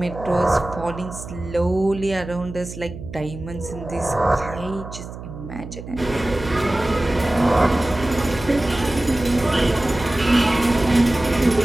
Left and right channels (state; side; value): noise; right; hum, 12 dB below the sound